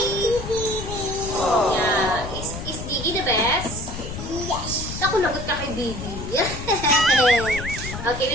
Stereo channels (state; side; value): noise; left; rumble, 8 dB below the sound